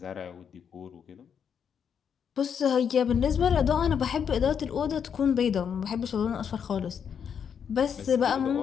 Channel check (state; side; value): quieter; right; 7.5 dB